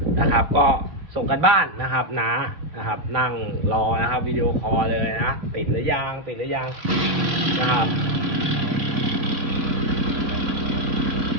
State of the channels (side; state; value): left; late; 3.3 ms